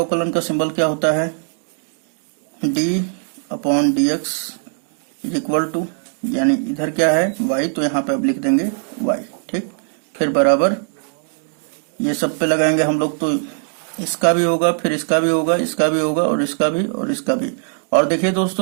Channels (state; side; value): silent; left; digital silence